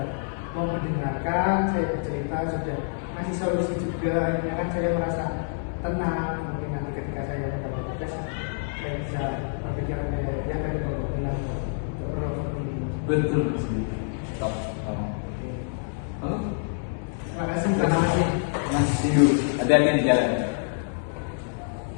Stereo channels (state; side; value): silent; right; digital silence